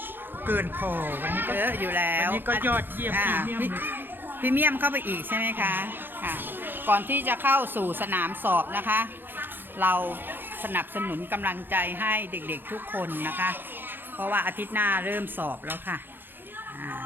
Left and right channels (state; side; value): late; left; 0.097 ms